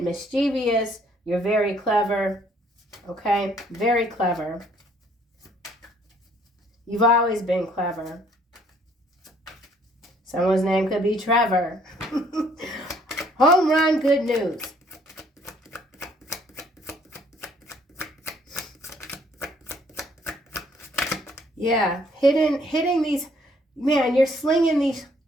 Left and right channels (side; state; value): both; normal; correlation 0.63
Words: mischievous. You're very clever. Okay, very clever. You've always been clever. Someone's name could be Trevor. Home run, good news. Yeah, hitting these, man, you're slinging